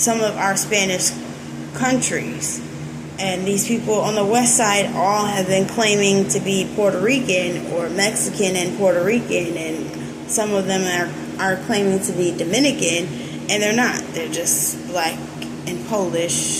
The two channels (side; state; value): both; identical; correlation 1.00